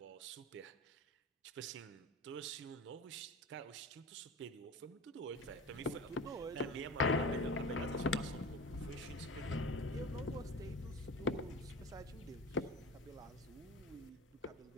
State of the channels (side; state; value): both; normal; correlation 0.34